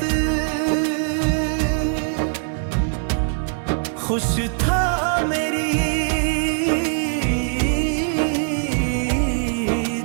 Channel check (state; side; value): silent; left; 65 dB below the other